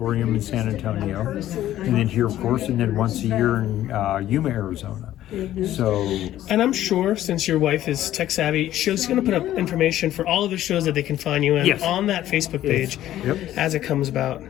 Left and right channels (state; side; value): quieter; right; 13.1 dB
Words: in San Antonio, and then here, of course, and then once a year in Yuma, Arizona. And I'm sure, since your wife is tech savvy, she's going to put up information for all of the shows that they can find you in on that Facebook page as it comes about.